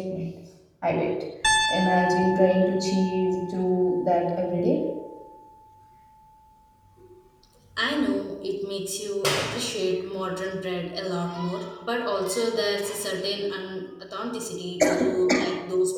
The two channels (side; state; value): both; identical; correlation 1.00